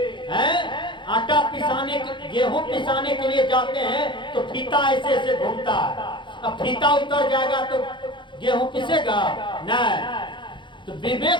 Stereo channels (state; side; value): late; right; 0.23 ms